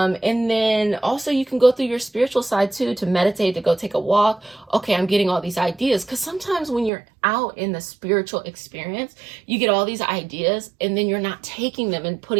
then also you can go through your spiritual side too, to meditate, to go take a walk. Okay, I'm getting all these ideas. Because sometimes when you're out in the spiritual experience, you get all these ideas and then you're not taking them and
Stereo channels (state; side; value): drops out; left; at 6.9 s